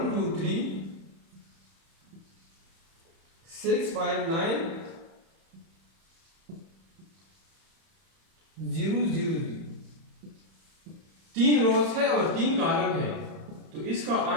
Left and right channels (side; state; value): left; late; 31 ms